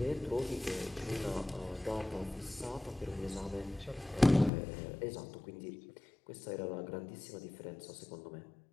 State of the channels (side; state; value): right; drops out; at 4.5 s